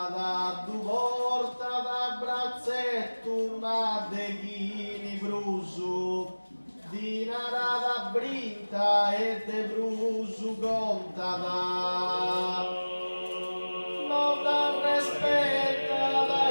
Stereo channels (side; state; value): both; inverted; correlation -1.00